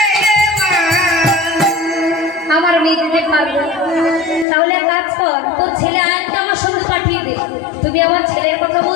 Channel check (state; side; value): drops out; right; at 4.5 s